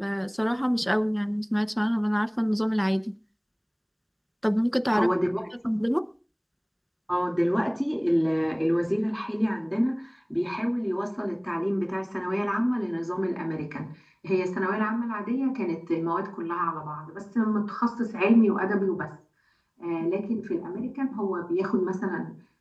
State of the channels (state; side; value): identical; both; correlation 1.00